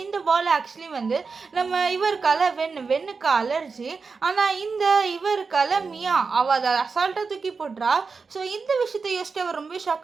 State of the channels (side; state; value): left; quieter; 4.8 dB